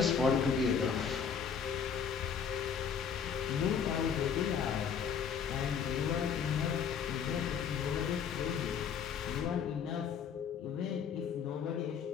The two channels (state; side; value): quieter; right; 7.0 dB